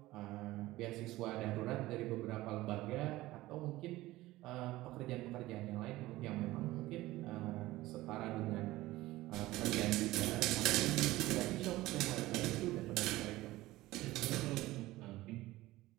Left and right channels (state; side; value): quieter; left; 17.7 dB